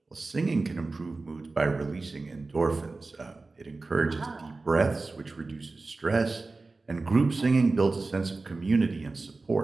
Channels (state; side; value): quieter; left; 3.6 dB